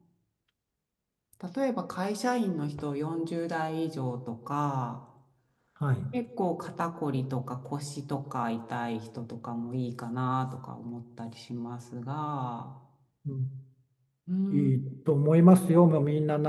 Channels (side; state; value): both; identical; correlation 1.00